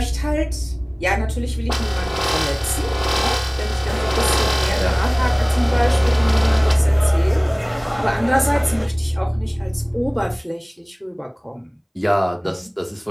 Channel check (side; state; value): both; identical; correlation 1.00